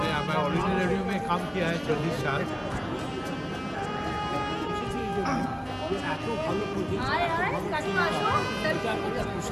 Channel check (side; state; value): both; identical; correlation 1.00